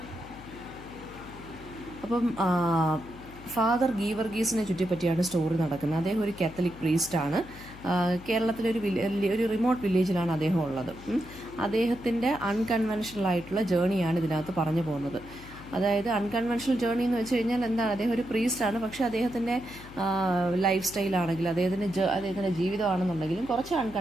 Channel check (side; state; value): left; noise; hum, 18 dB below the sound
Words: അപ്പം ഫാദർ ഗീവർഗീസിനെ ചുറ്റിപ്പറ്റിയാണ് സ്റ്റോറി നടക്കുന്നത്. അദ്ദേഹം ഒരു കാത്തലിക് പ്രീസ്റ്റാണ്. കേരളത്തിലെ ഒരു റിമോട്ട് വില്ലേജിലാണ് അദ്ദേഹം ഉള്ളത്. അദ്ദേഹത്തിൻ്റെ അൺകൺവെൻഷണൽ ആയിട്ടുള്ള ജേണിയാണ് ഇതിനകത്ത് പറഞ്ഞു പോകുന്നത്. അതായത് അൺകൺവെൻഷണൽ ജേർണി എന്ന് വെച്ച് കഴിഞ്ഞാൽ എന്താണ്, അദ്ദേഹം ഒരു പ്രീസ്റ്റാണ്. പക്ഷേ അദ്ദേഹത്തിൻ്റെ ലൈഫ് സ്റ്റൈലാണെങ്കിലും അദ്ദേഹത്തിൻ്റെ ജീവിതമാണെന്നുണ്ടെങ്കിലും കുറച്ച്